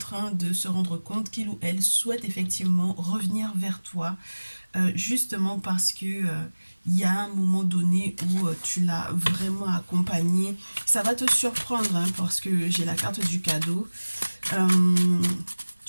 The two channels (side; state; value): both; inverted; correlation -1.00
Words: de se rendre compte qu'il ou elle souhaite effectivement revenir vers toi, justement parce que il y a un moment donné où tu l'as vraiment accompagné. Ça va te surprendre hein, parce que j'ai la carte du cadeau. Euh,